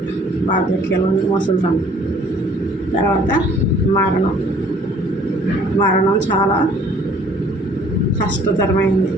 వార్ధక్యంలో ముసలితనం. తర్వాత మరణం చాలా కష్టతరమైంది.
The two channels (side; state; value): both; normal; correlation 0.56